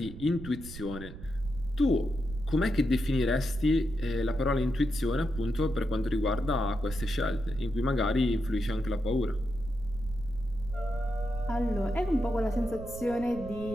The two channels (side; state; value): right; noise; rumble, 12 dB below the sound